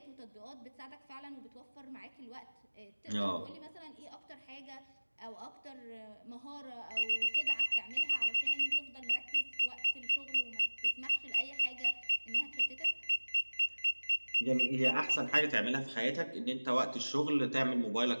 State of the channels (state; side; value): inverted; both; correlation -1.00